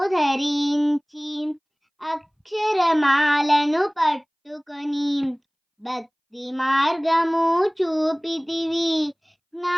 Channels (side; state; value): both; identical; correlation 1.00